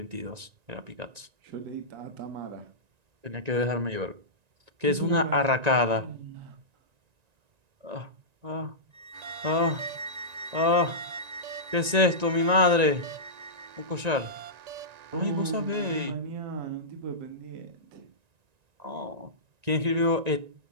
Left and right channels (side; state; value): left; late; 1.9 ms